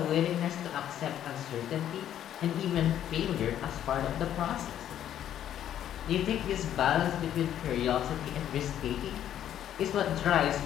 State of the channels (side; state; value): right; quieter; 10.8 dB